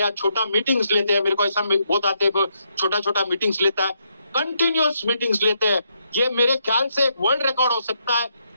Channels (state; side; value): inverted; both; correlation -0.77